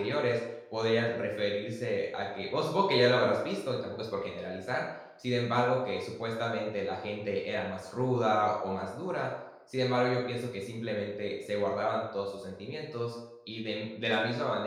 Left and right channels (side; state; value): both; identical; correlation 1.00